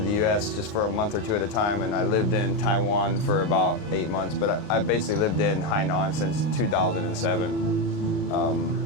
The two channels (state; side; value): late; right; 38 ms